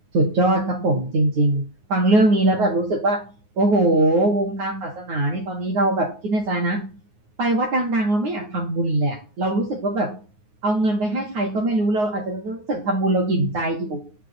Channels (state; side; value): late; left; 9.5 ms